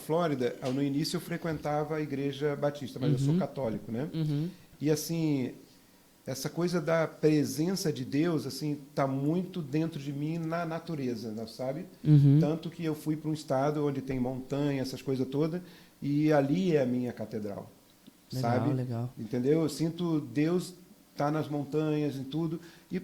no início eu frequentava a igreja batista, mas eu sou católico, né? E assim, essa coisa da presença de Deus, assim, tá muito dentro de mim na natureza, né, sabe? Tanto que eu fui para um estado onde tem montanha, essas coisas todas, e ali é a minha catedral, sabe? Legal. Entendeu? Eu sinto Deus tá nas montanhas e tudo. E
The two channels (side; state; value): both; identical; correlation 1.00